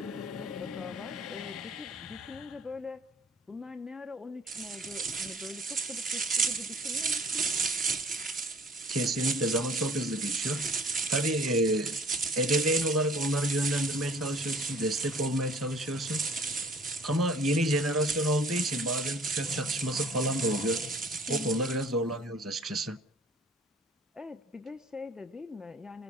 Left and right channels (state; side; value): normal; both; correlation 0.52